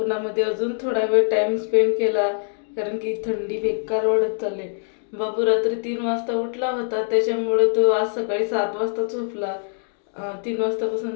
अजून थोडा वेळ टाईम स्पेंड केला कारण की थंडी बेकार वाढत चालली. बाबू रात्री 3 वाजता उठला होता, त्याच्यामुळे तो आज सकाळी 7 वाजता झोपला. 3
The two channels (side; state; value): right; silent; 57 dB below the other